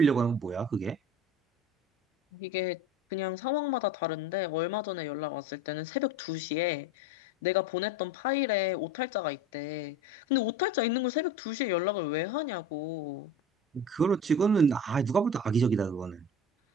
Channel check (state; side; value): normal; both; correlation 0.36